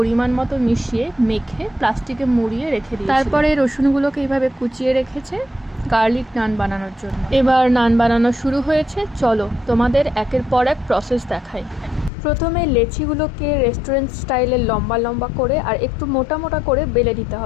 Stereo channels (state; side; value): drops out; right; at 12.1 s